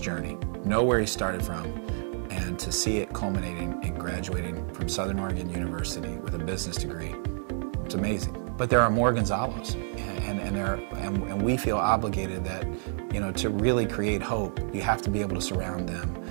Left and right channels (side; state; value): left; silent; 56 dB below the other